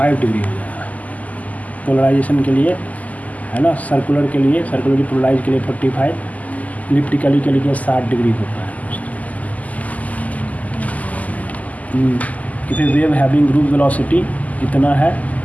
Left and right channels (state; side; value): late; right; 0.076 ms